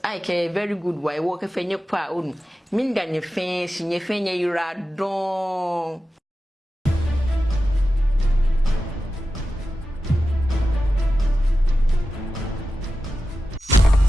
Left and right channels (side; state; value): both; normal; correlation 0.93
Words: I can very good why work fe nye pa on minda nye fe nye yura don.